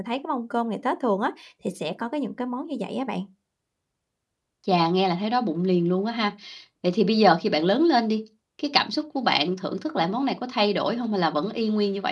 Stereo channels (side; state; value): both; identical; correlation 1.00